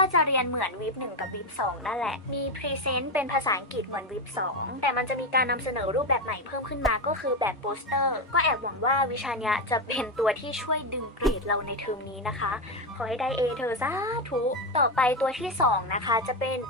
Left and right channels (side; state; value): both; normal; correlation 0.11